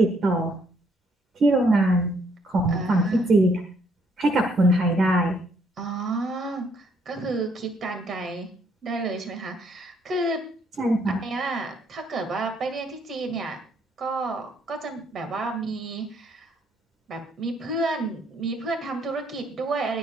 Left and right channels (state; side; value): normal; both; correlation 0.69